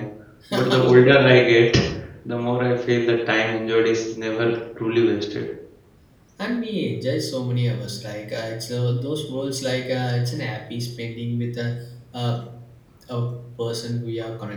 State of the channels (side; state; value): both; identical; correlation 1.00